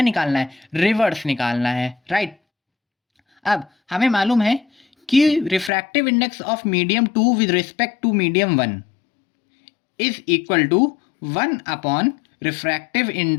निकालना है, रिवर्स निकालना है, राइट. अब हमें मालूम है कि refractive index of medium 2 with respect to medium 1 is equal to 1 refractive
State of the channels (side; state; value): right; drops out; at 5.7 s